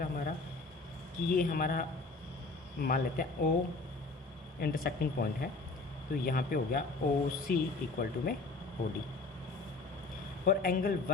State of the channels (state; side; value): quieter; right; 3.5 dB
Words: हमारा कि ये हमारा मान लेते हैं O इंटरसेक्टिंग पॉइंट है, तो यहाँ पे हो गया OC इक्वल टू में OD। और एंगल